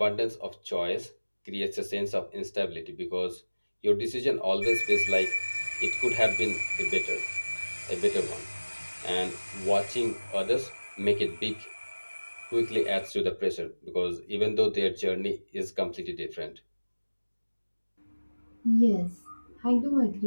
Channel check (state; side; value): inverted; both; correlation -1.00